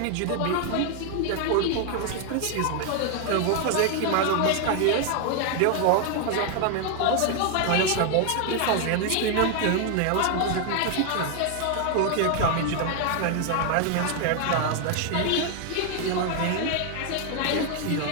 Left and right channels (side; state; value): both; different; correlation 0.00